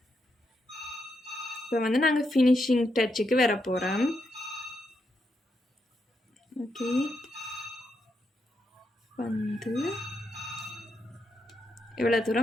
இப்போ வந்து நாங்கள் ஃபினிஷிங் டச்சுக்கு வர போகிறோம். ஓகே, வந்து இவ்வளோ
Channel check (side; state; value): both; normal; correlation 0.82